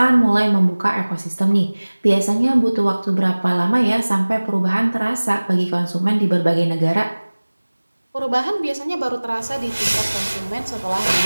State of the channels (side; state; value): both; inverted; correlation -1.00